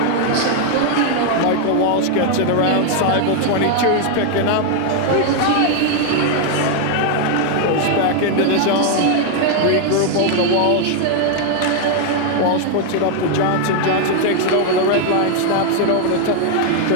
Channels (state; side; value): different; both; correlation 0.00